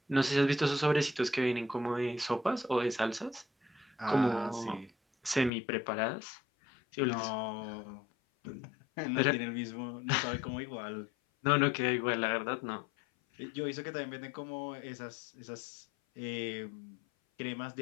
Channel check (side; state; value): right; drops out; at 5.5 s